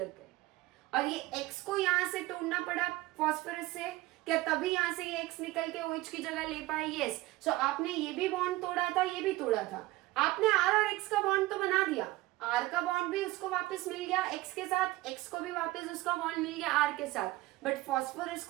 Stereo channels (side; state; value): left; quieter; 18.8 dB